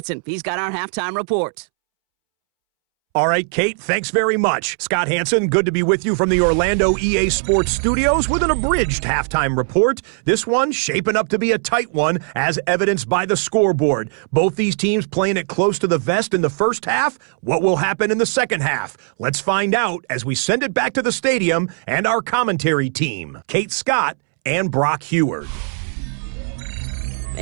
He's got our halftime report. All right, Kate, thanks very much. Scott Hanson, good to be with you from the Orlando EA Sports Studios with an abridged halftime report. This one shaping up to be a tight one, as evidenced by the scoreboard. Both these teams playing it close to the vest in the first half. What will happen in the second half? Let's find out as we send it back to the stadium and our commentary team, Kate Scott and Brock Heward.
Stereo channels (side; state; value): left; silent; 66 dB below the other